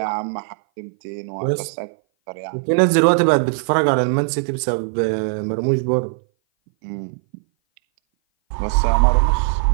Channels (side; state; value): left; silent; 58 dB below the other